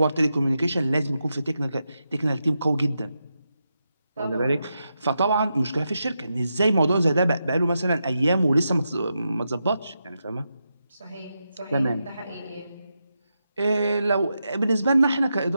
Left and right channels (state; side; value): inverted; both; correlation -0.87